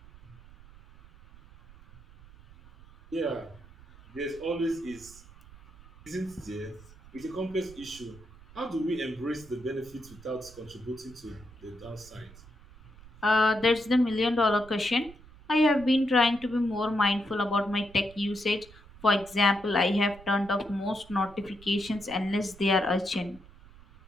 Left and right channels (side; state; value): right; noise; rumble, 21 dB below the sound